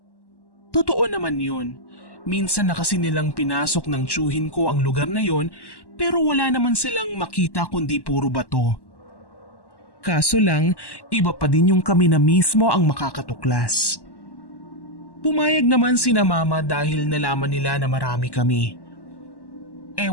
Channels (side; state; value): right; late; 1.1 ms